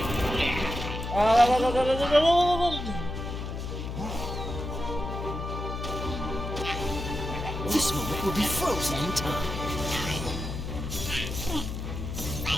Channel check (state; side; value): noise; left; hum, 5 dB below the sound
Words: This moment will be frozen in time.